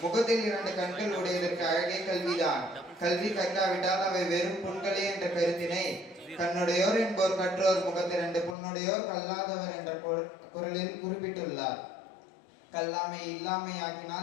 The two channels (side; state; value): right; drops out; at 8.6 s